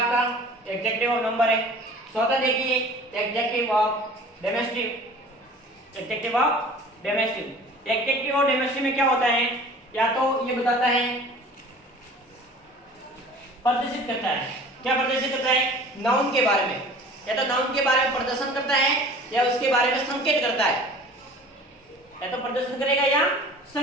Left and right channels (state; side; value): normal; both; correlation 0.45